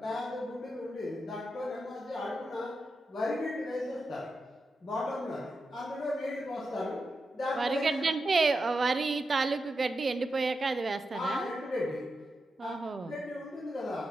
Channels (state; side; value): normal; both; correlation 0.88